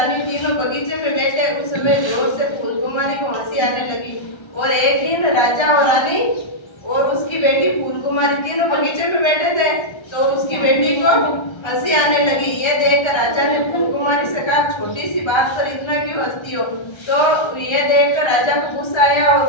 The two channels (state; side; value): late; right; 1.3 ms